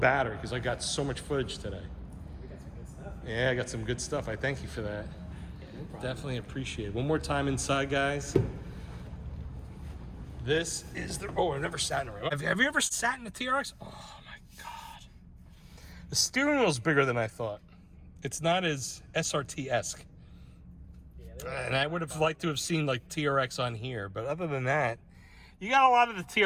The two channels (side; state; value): both; identical; correlation 1.00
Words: because I got so much footage today. Yeah, I got some good stuff. I thank you for that. Definitely appreciate it. One more time inside, guys. This is the... Oh, I've never sat in a Ram. Have you ever sat in a TRX? Oh, my God. The steering wheel's bigger than I thought. It's not as SRT-esque. Yeah, and I would have liked to have seen, like, TRX on here. But other than that, you got a lot of the